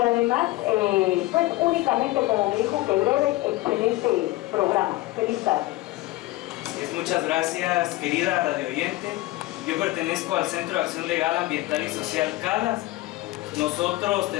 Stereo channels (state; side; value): quieter; right; 18.8 dB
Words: además, pues únicamente, como me dijo, que breve, excelente programa. Feliz tarde. Muchas gracias, querida radio oyente. Yo pertenezco al Centro de Acción Legal, Ambiental y Social CALAS. Nosotros